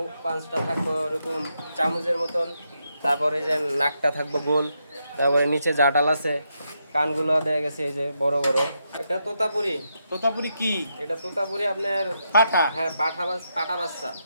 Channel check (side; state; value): both; inverted; correlation -0.82